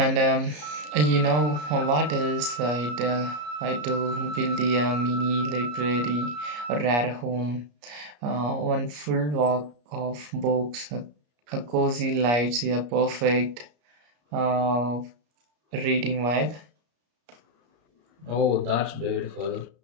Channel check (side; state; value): left; late; 33 ms